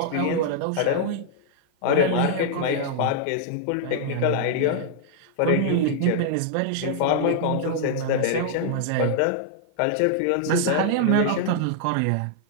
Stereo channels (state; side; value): different; both; correlation -0.01